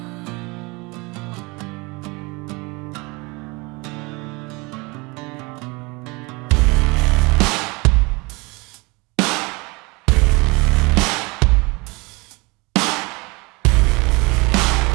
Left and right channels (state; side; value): quieter; left; 26.4 dB